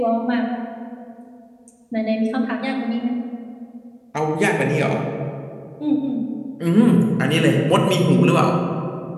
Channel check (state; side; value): identical; both; correlation 1.00